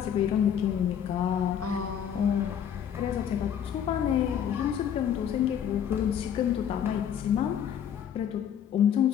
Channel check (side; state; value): right; quieter; 8.9 dB